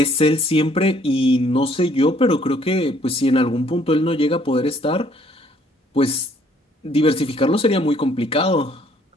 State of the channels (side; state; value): both; normal; correlation 0.63